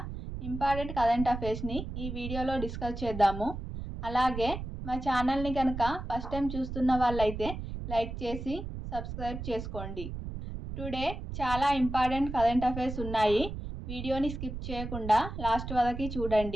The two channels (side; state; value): right; noise; rumble, 7 dB below the sound